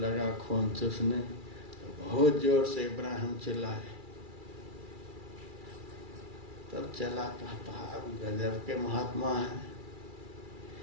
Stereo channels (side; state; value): left; late; 2.3 ms